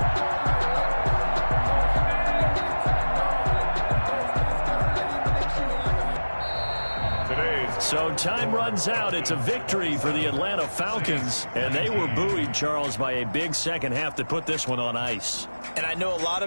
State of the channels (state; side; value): inverted; both; correlation -1.00